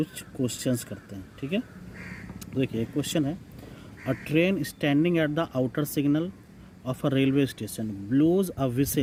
क्वेश्चंस करते हैं। ठीक है, देखिए एक क्वेश्चन है, a train standing at the outer signal of a railway station blows a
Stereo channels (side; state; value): both; identical; correlation 1.00